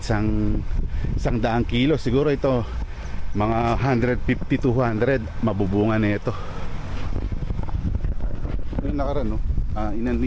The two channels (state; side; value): identical; both; correlation 1.00